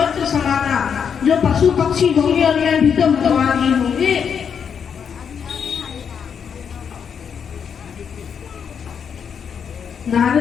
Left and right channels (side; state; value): right; quieter; 7.2 dB